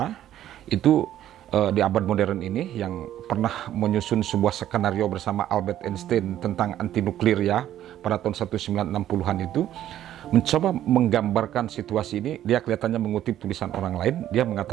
itu di abad modern ini, yang pernah menyusun sebuah skenario bersama Albert Einstein tentang anti nuklir ya pada tahun 1960-an itu, mencoba menggambarkan situasi ini. Dia kelihatannya mengutip tulisan orang lain. Dia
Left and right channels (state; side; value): quieter; left; 12.1 dB